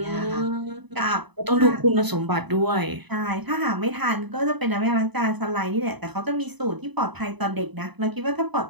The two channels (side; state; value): left; late; 0.99 ms